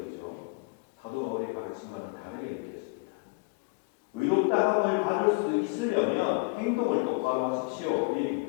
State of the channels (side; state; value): right; quieter; 29.2 dB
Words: 사도 바울의 가르침과는 다르게 느껴집니다. 의롭다 함을 받을 수 있으려면 행동을 똑바로 하십시오. 그